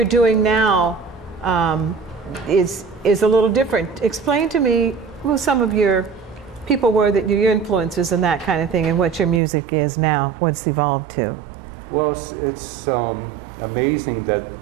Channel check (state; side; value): drops out; left; at 9.4 s